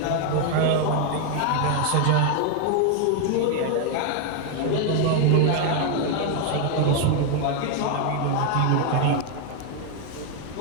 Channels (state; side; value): different; both; correlation 0.01